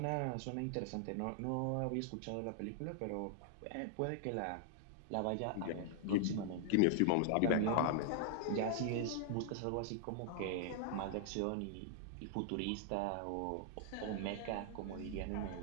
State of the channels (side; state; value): both; different; correlation -0.01